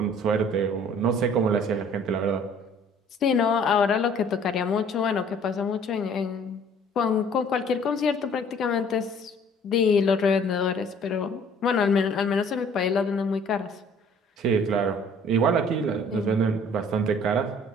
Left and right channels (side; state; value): both; normal; correlation 0.54